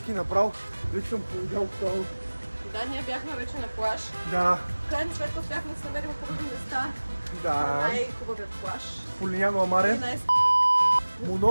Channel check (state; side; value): inverted; both; correlation -1.00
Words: направо. Вече съм повидял това. Да, ние бяхме вече на плаж. Да, В крайна сметка успяхме да се намерим хубави места. да. Най-хубавият плаж. Полиняно И Амаре. най-